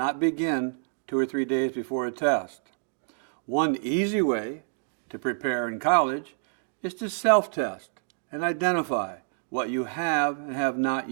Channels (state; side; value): silent; left; digital silence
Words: begin 2 or 3 days before a test. One easy way to prepare in college is to self-test and identify what you have and have not